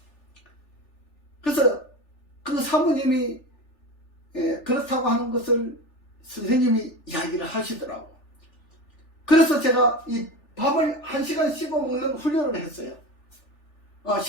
그래서 그 사모님이 그렇다고 하는 것을 선생님이 이야기를 하시더라고. 그래서 제가 이 밥을 1시간 씹어 먹는 훈련을 했어요.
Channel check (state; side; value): late; right; 3.4 ms